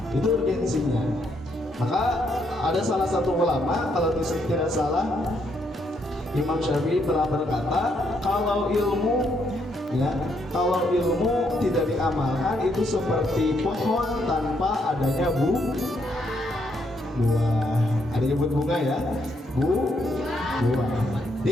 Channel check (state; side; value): normal; both; correlation 0.74